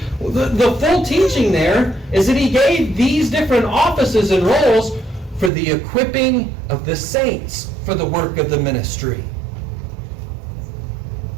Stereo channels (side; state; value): left; drops out; at 5.5 s